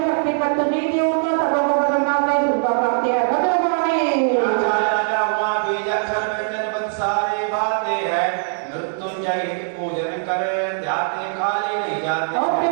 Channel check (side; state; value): left; silent; digital silence